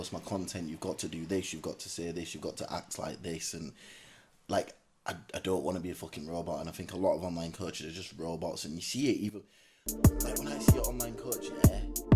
my content, you've got to do this, you've got to say this, you've got to act like this, and like I don't want to be a fucking robot. And I think a lot of online coaches are just robots, and you see it even like when I see an online coach,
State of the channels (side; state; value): both; identical; correlation 1.00